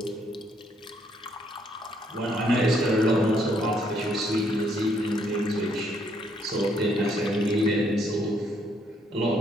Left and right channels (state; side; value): normal; both; correlation 0.70